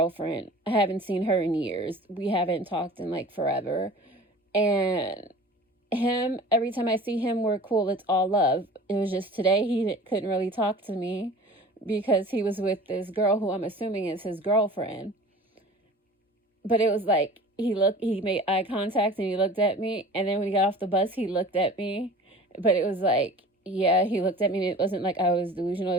I haven't seen her in years. We haven't talked in like forever. And him, every time I see him, we're cool. It's all love. It was just today he couldn't really talk to me because he was with this girl who I'm assuming is his girlfriend. But it was like he made eye contact and he looked at me. And then when he got off the bus, he looked at me. But it was like, yeah, he looked at me and it wasn't like I was delusional.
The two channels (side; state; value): both; normal; correlation 0.41